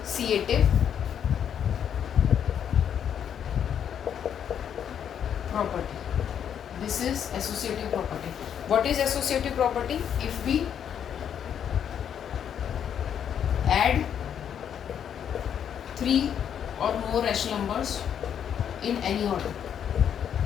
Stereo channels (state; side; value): quieter; right; 8.7 dB